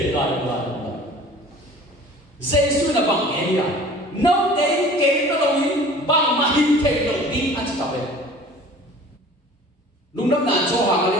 Yesus nak bangkit dia, nanti kita lagi bang mahir kita di atas kapal. Lundam nak coba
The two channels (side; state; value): both; normal; correlation 0.46